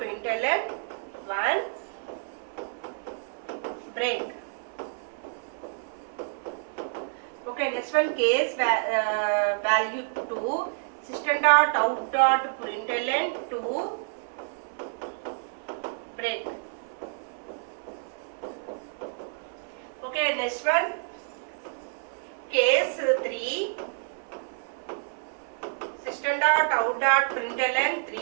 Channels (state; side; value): silent; left; 58 dB below the other